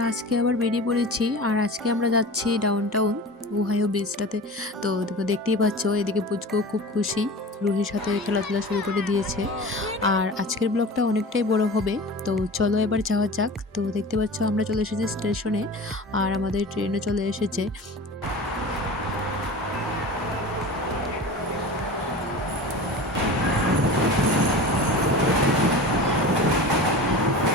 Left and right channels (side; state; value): both; normal; correlation 0.34